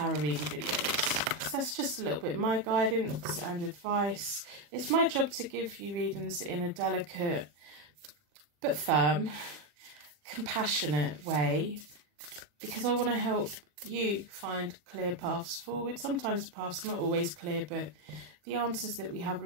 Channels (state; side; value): late; left; 40 ms